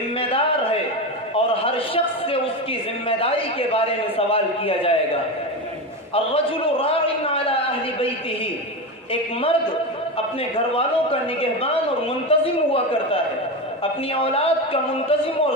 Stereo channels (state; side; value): normal; both; correlation 0.18